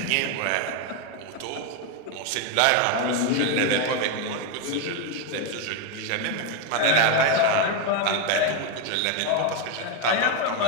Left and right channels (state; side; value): different; both; correlation 0.02